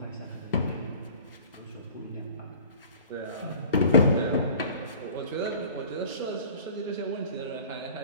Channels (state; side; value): inverted; both; correlation -0.44